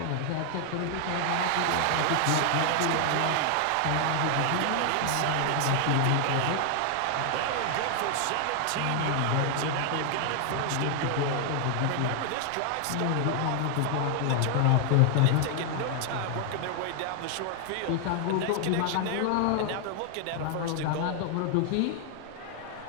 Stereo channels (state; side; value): different; both; correlation 0.00